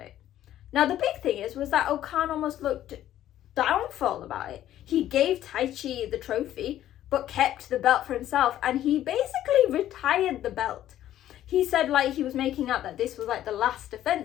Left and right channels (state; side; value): quieter; right; 12.4 dB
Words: it. Now the big thing was that Okan almost looked downfall about it. He gave Taichi the trophy, but kept the belt for himself, and he basically retired the belt. He said like he was making out that this was like the last